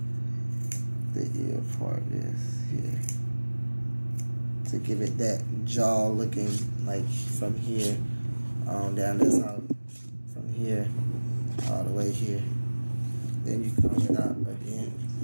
the ear part is here, to give it that jaw looking like from here on down this out, from here all the way here. Then you comb it out again.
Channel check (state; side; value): inverted; both; correlation -1.00